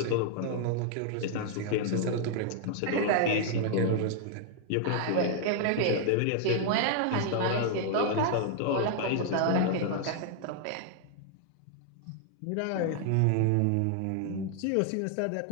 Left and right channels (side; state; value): both; different; correlation 0.00